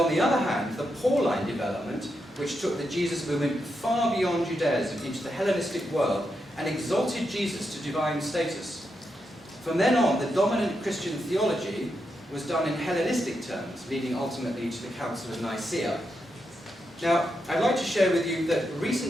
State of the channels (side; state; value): both; normal; correlation 0.84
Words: the other hand, the Pauline development, which took the Jesus movement far beyond Judaism into the Hellenistic world and exalted Jesus to divine status. From then on, the dominant Christian theology was done in Hellenistic terms, leading ultimately to the Council of Nicaea. Now, I'd like to share with you that